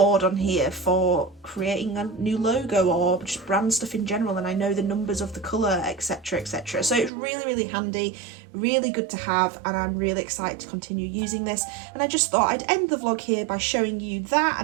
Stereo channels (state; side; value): drops out; left; at 7.1 s